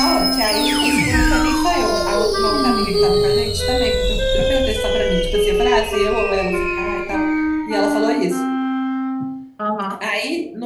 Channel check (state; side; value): identical; both; correlation 1.00